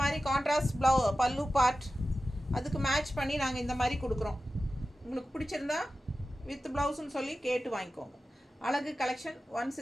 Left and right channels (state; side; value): normal; both; correlation 0.94